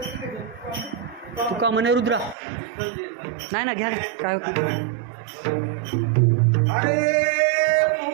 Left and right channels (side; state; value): left; drops out; at 2.4 s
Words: तुका म्हणे रुद्रा नाही ना, घ्या काय अरे